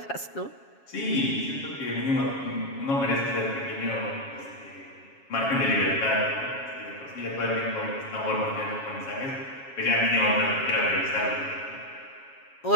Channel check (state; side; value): late; right; 7.3 ms